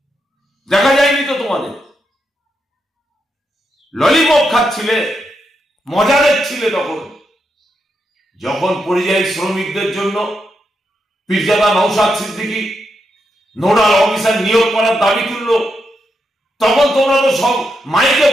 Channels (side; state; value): both; normal; correlation 0.83